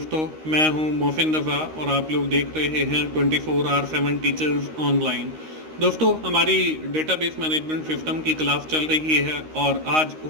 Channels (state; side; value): late; left; 13 ms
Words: मैं हूं मोहसिन रज़ा और आप लोग देख रहे हैं 24/7 टीचर्स ऑनलाइन। दोस्तों, हमारी डेटाबेस मैनेजमेंट सिस्टम की क्लास चल रही है और आज